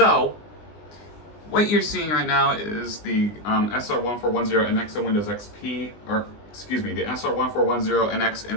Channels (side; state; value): right; late; 20 ms